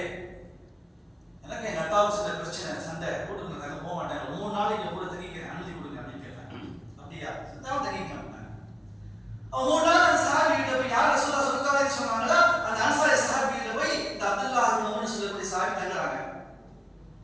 எனக்கு எங்க அத்தாவுக்கு சில பிரச்சனை, சண்டை, வீட்டுக்கு நாங்கள் போக மாட்டாங்க, 3 நாளைக்கு கூட தங்கிக்கிறேன், அனுமதி கொடுங்க அப்படின்னு கேட்டாங்க. அப்படியா, சித்தாவும் தங்கிக்க மாட்டாங்க. அவன் 3 நாள் அந்த சஹாபி கிட்ட போய் யார் ரசூலுல்லாஹ் சொர்க்கவாதி சொன்னாங்களோ அந்த அன்சாரி சஹாபி கிட்ட போய் இந்த அப்துல்லா முஹம்மது சொல்லக்கூடிய சஹாபி தங்குறாங்க.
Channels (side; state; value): both; identical; correlation 1.00